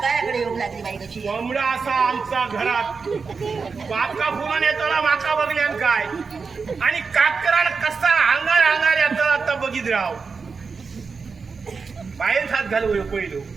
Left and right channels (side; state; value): left; quieter; 5.0 dB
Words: कोंबडा असा आमचा घरात बाका फुलून येताना माका बघल्यान काय आणि काकराला कसा अंगार अंगार येताना आता बघित राव बाहेर हात घालू पहिलो